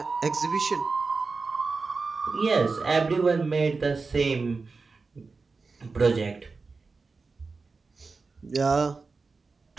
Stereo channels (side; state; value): left; quieter; 4.3 dB